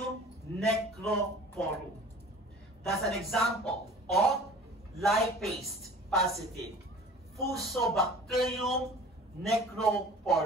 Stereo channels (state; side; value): normal; both; correlation 0.44